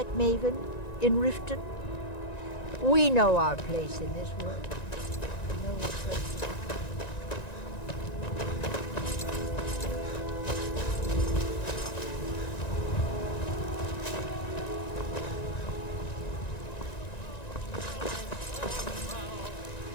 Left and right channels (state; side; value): late; right; 1.9 ms